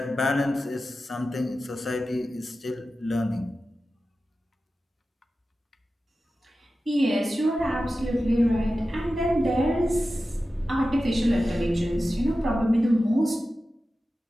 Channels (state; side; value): normal; both; correlation 0.93